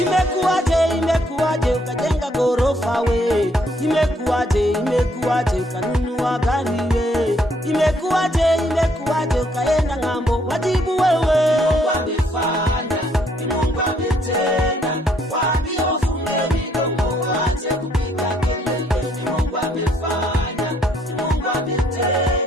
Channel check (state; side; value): normal; both; correlation 0.68